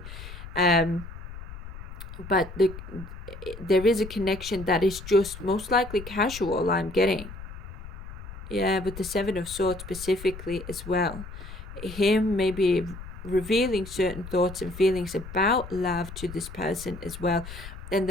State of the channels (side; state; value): left; noise; rumble, 12 dB below the sound